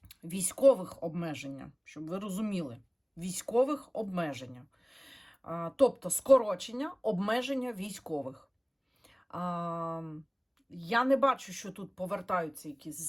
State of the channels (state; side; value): identical; both; correlation 1.00